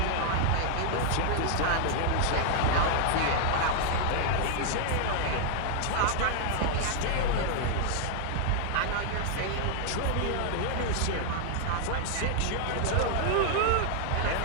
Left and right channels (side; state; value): both; different; correlation -0.01